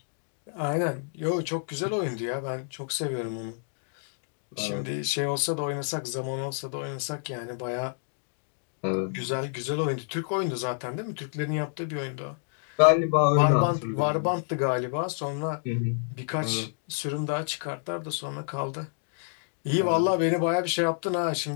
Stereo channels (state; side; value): silent; right; digital silence